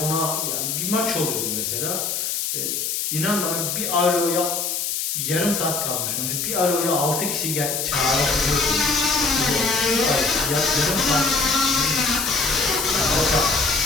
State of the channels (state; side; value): noise; left; hiss, 1 dB below the sound